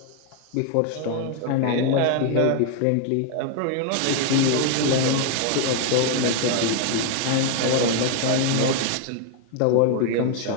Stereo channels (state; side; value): different; both; correlation 0.00